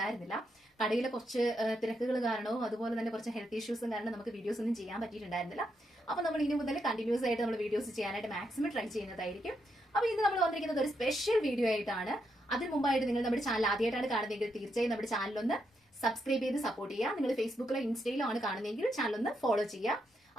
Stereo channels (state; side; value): normal; both; correlation 0.81